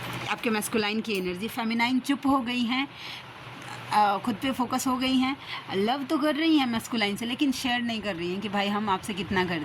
आपके मैस्कुलाइन की एनर्जी, फेमिनाइन चुप हो गई हैं, खुद पे फोकस हो गई हैं। लव तो कर रही हैं मैस्कुलाइन से, लेकिन शेयर नहीं कर रही हैं कि भाई हम आपसे कितना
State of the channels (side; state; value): both; identical; correlation 1.00